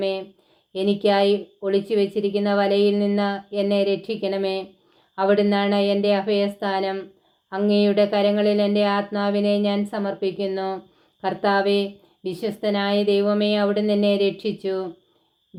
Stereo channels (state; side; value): identical; both; correlation 1.00